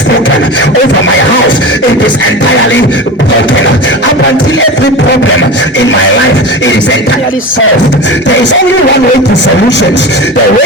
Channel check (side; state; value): both; normal; correlation 0.28